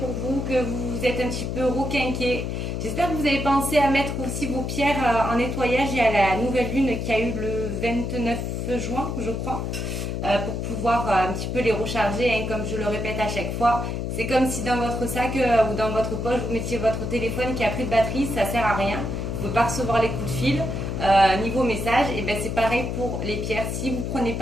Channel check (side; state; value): left; noise; hum, 3 dB below the sound